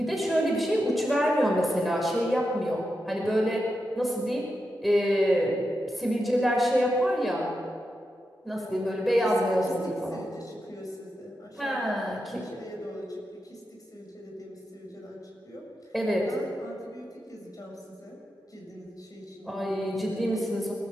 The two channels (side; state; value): both; normal; correlation 0.87